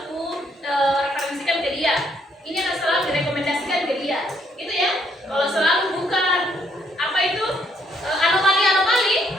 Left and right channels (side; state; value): both; normal; correlation 0.70